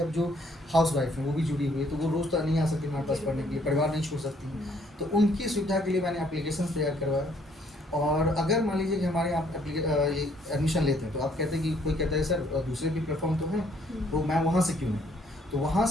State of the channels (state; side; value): normal; both; correlation 0.65